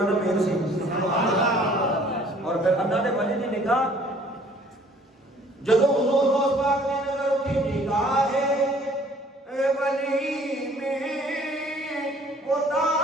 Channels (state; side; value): normal; both; correlation 0.56